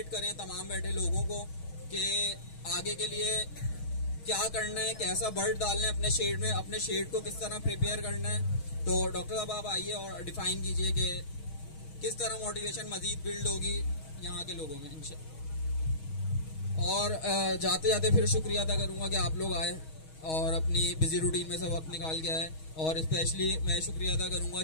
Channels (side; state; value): right; late; 6.3 ms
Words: करें तमाम बैठे लोगों को कि आगे के लिए क्या करना है, कैसा बर्ड डालना है अपने शेड में, अपने शेड को किस तरह प्रिपेयर करना है। तो डॉक्टर साहब आप आइए और डिफाइन कीजिए कि किस तरह मोटिवेशन मजीद बिल्ड होगी यहाँ के लोगों में इंशाल्लाह। और जाते जाते फिर शुक्रिया अदा करूँगा कि आप लोग आए और अपनी बिजी रूटीन में से वक्त निकाल के आए, और स्पेशली मैं शुक्रिया अदा करूँगा